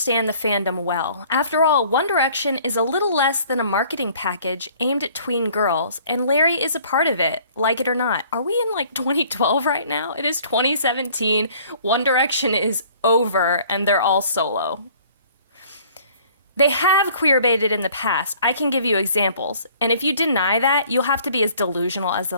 the fandom well. After all, One Direction is a little less than a marketing package aimed at tween girls, and Larry is a part of it, like it or not. Are we in like 2012 right now? It is 2017. One Direction is over, and they're all solo. They have queerbaited in the past. I can give you examples. And if you deny that, you'll have to be as delusional as the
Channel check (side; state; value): both; inverted; correlation -0.55